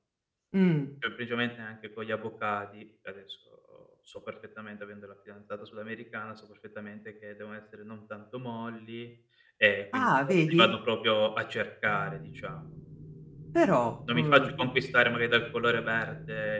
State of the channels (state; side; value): identical; both; correlation 1.00